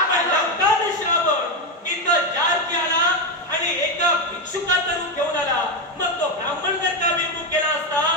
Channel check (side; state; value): both; normal; correlation 0.10